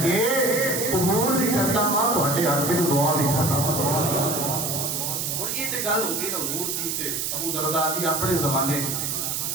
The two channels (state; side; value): noise; right; hiss, 1 dB below the sound